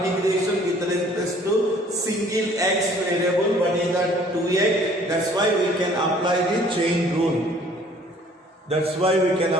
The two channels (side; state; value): both; normal; correlation 0.55